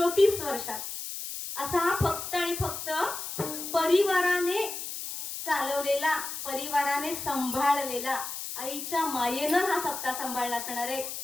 वर्षात. असा हा फक्त आणि फक्त परिवाराने चालवलेला, परिवाराने सांभाळलेला, आईच्या मायेनं हा सप्ताह सांभाळला असणार आहे.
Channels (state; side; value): noise; left; hiss, 7 dB below the sound